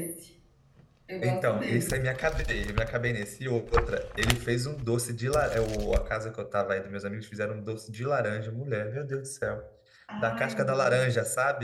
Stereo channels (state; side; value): identical; both; correlation 1.00